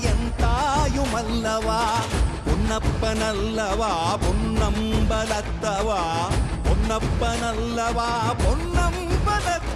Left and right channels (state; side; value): identical; both; correlation 1.00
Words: என் தாயுமல்லவா, பொன்னப்பனல்லவா பொன்னம்பலத்தவா, பொன்னப்பனல்லவா